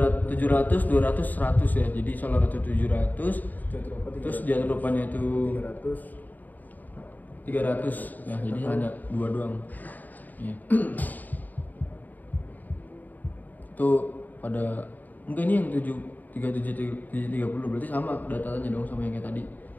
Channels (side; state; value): right; late; 0.084 ms